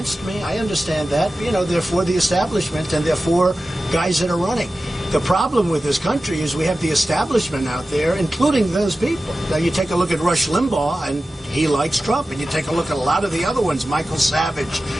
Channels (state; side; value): normal; both; correlation 0.94